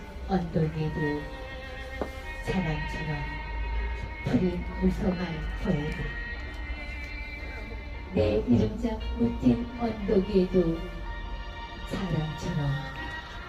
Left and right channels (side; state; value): both; identical; correlation 1.00